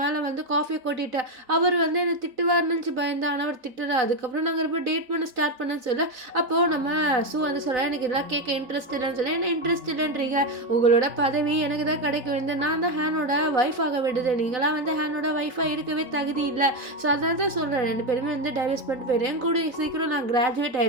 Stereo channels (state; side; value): late; left; 4.0 ms